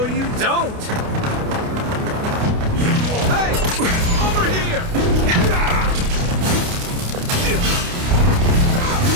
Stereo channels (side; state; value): left; late; 29 ms